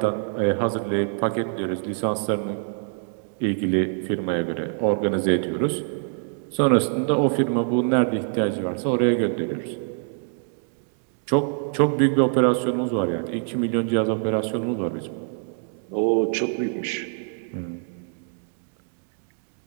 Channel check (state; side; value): silent; left; digital silence